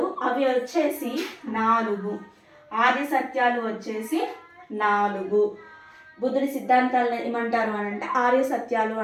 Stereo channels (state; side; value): identical; both; correlation 1.00